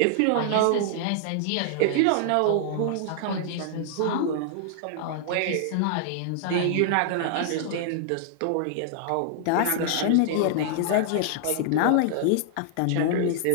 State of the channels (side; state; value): both; different; correlation -0.01